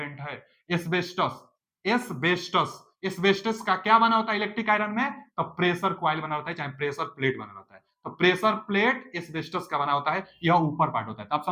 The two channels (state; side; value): identical; both; correlation 1.00